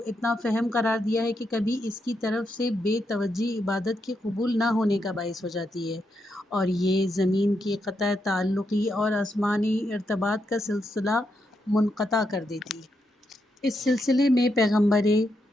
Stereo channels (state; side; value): normal; both; correlation 0.82